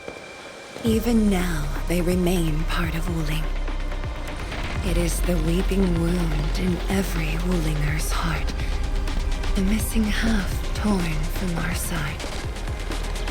Even now, they remain part of Wuling. It is the weeping wound in every Wulinger's heart. The missing half torn from our side.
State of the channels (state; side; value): identical; both; correlation 1.00